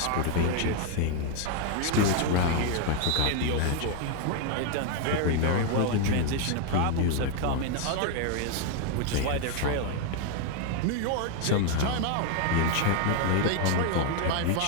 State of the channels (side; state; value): both; different; correlation 0.01